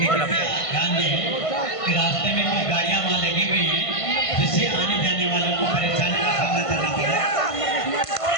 तरफ से। ध्यान दें कि रास्ते में कुछ गाड़ियां वहाँ लगी हुई हैं जिससे आने जाने वालों को परेशानी का सामना करना पड़ा।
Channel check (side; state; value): right; late; 1.5 ms